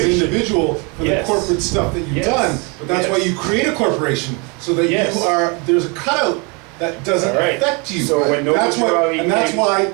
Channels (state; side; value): quieter; left; 31.5 dB